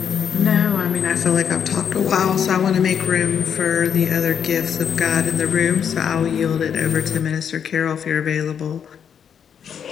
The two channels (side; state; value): right; quieter; 7.9 dB